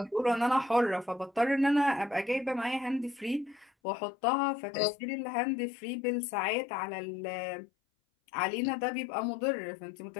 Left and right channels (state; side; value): drops out; right; at 3.7 s